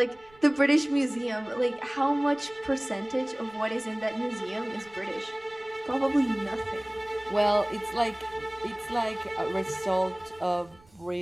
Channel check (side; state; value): right; noise; rumble, 28 dB below the sound